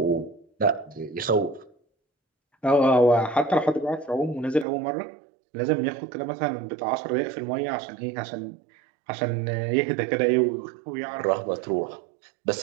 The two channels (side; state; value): left; drops out; at 4.7 s